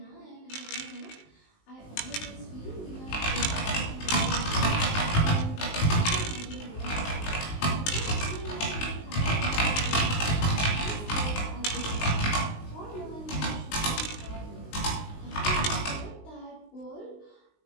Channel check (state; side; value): late; right; 19 ms